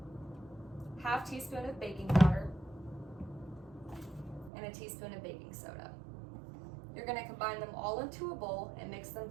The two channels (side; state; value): left; drops out; at 4.5 s